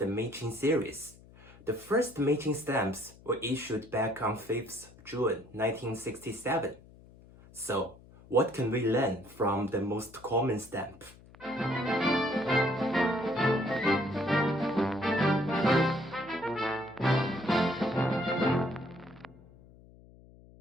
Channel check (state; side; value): noise; left; hum, 23 dB below the sound